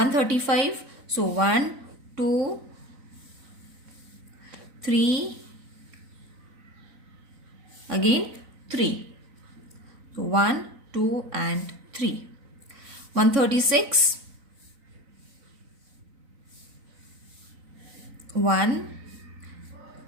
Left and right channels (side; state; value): left; late; 3.9 ms